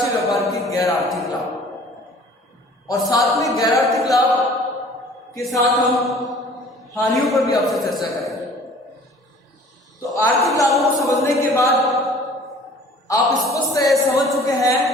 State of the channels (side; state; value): both; normal; correlation 0.49